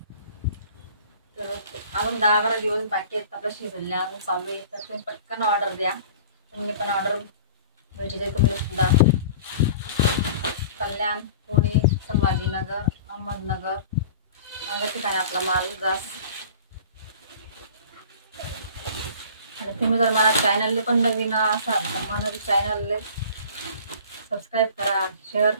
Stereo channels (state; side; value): inverted; both; correlation -0.43